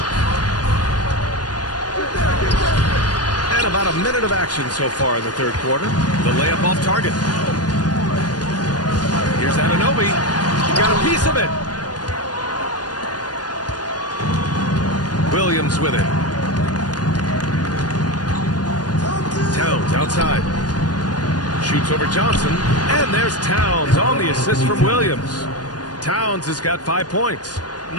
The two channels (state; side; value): late; right; 0.69 ms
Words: About a minute of action so far in the third quarter. The layup off target. Here's Anunoby. Got a piece of it. Williams with it. Towns outside. Shoots over Johnson. And there's Towns on the assist from Williams. Towns has got 5 points.